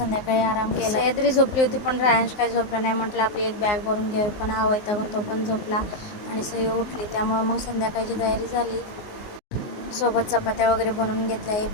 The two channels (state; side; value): late; right; 19 ms